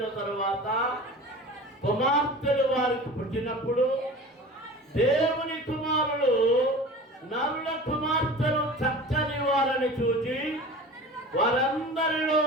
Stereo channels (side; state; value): both; normal; correlation 0.37